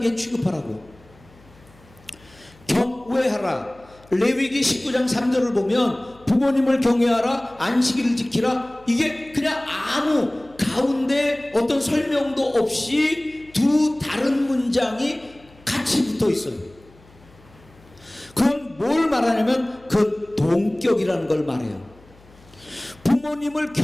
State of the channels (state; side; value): noise; left; hum, 26 dB below the sound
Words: 취급하라고. 경외하라. 레위기 19장 3절을 보면 부모님을 경외하라, 안식일을 지키라, 이게 그냥 아무 가운데 어떤 설명도 없이 두 다른 문장이 같이 붙어 있어요. 그건 뭘 말하냐면 그건 동격이라는 걸 말해요. 부모님을